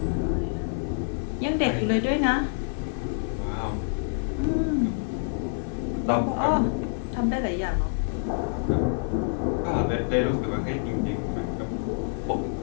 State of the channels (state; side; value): silent; right; digital silence